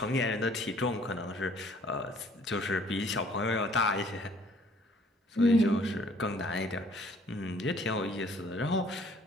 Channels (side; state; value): both; normal; correlation 0.58